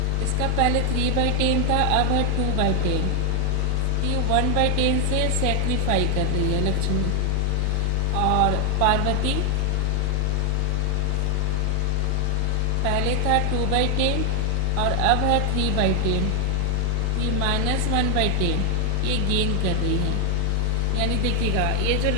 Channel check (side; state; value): both; different; correlation 0.00